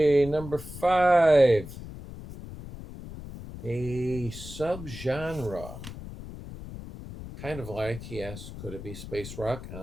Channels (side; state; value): left; noise; rumble, 12 dB below the sound